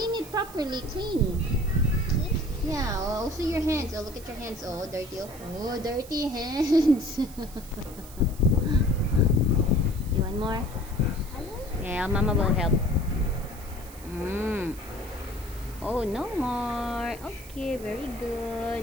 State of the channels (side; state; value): right; noise; hiss, 18 dB below the sound